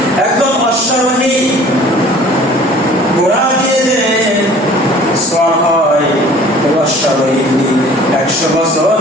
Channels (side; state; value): both; normal; correlation 0.49